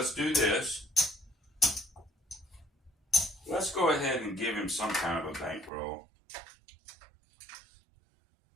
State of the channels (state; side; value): drops out; left; at 5.7 s